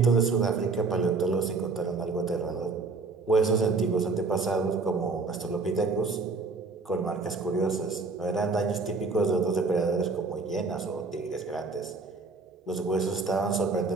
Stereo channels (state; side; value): quieter; left; 4.0 dB